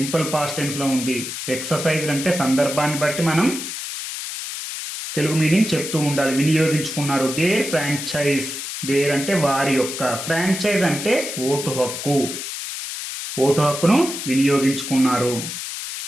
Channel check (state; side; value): noise; left; hiss, 7 dB below the sound